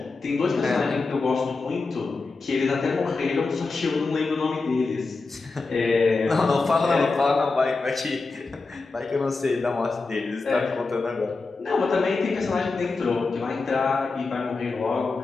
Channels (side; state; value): right; quieter; 3.9 dB